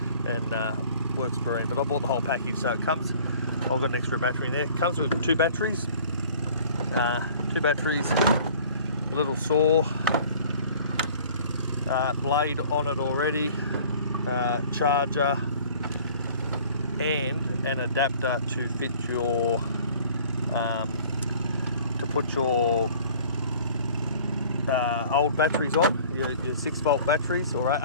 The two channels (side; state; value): both; inverted; correlation -0.50